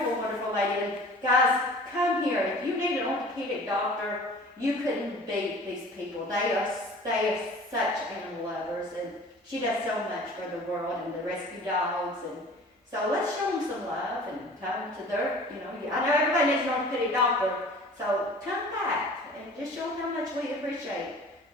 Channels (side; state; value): both; normal; correlation 0.45